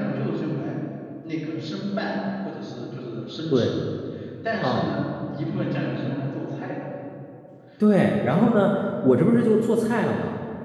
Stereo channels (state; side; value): identical; both; correlation 1.00